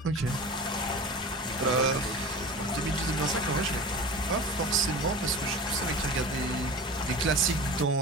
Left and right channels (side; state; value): both; normal; correlation 0.34